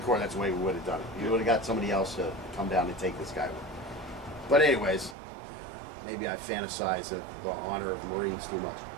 Corps, that's the way we would have done it. You would have got somebody else to come down and take this guy away. But anyways, maybe I fantasize the honor of Marines too much.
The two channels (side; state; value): left; drops out; at 5.2 s